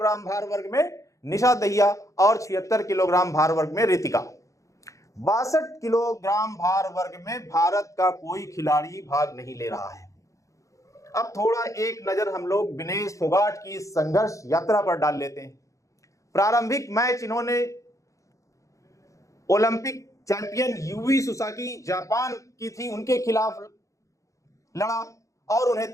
भार वर्ग में निशा दहिया और 76 किलोग्राम भार वर्ग में रितिका। 62 किलोग्राम भार वर्ग में भारत का कोई खिलाड़ी भाग नहीं ले रहा है। अब थोड़ा एक नजर हम लोग विनेश फोगाट की संघर्ष यात्रा पर डाल लेते हैं। प्रारंभिक मैच इन्होंने Olympic champion UV Susaki Japan की थी, उनके खिलाफ लड़ा और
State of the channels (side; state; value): right; late; 0.15 ms